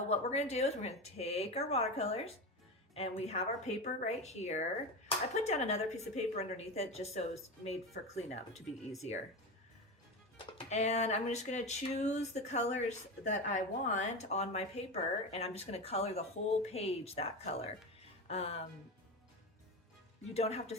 what we're going to do is we're going to take our watercolors, and we have our paper right here. I put down another piece of paper underneath it just so it's made for cleanup to be easier. And I'm just gonna choose the colors that I want on my paper, and I'm just gonna color the whole page that color. You don't have to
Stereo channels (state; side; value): normal; both; correlation 0.21